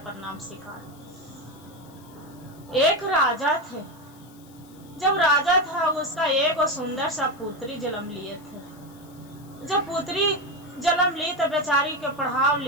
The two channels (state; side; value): noise; left; hiss, 26 dB below the sound